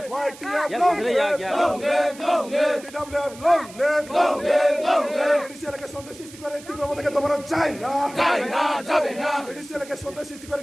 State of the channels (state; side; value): noise; right; hiss, 19 dB below the sound